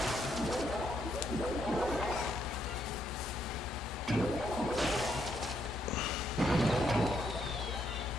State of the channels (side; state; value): both; normal; correlation 0.75